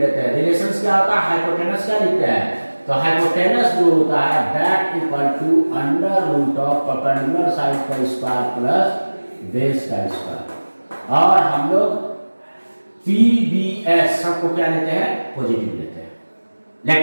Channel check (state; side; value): inverted; both; correlation -1.00